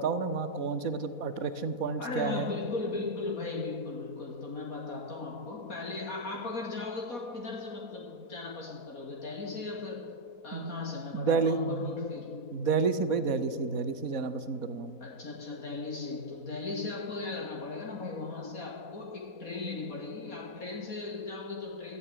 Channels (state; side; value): late; right; 4.2 ms